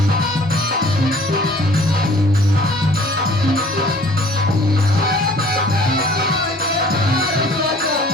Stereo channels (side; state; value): both; normal; correlation 0.53